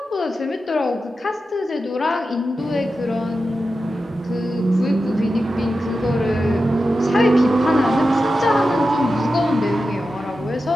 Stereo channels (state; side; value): normal; both; correlation 0.91